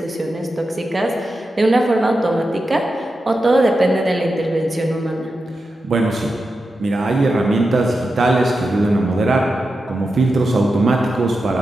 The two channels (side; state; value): both; normal; correlation 0.90